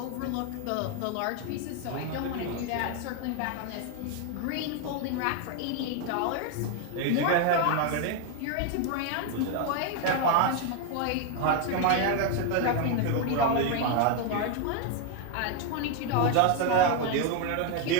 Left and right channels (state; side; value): different; both; correlation 0.01